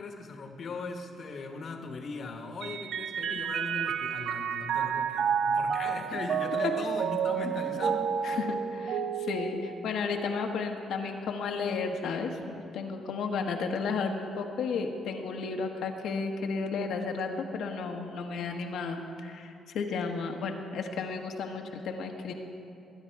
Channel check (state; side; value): normal; both; correlation 0.63